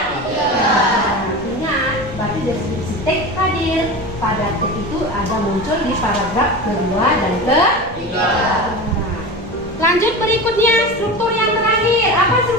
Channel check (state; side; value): noise; left; rumble, 20 dB below the sound